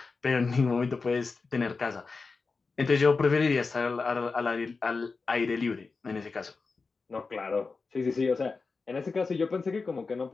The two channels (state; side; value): quieter; right; 4.3 dB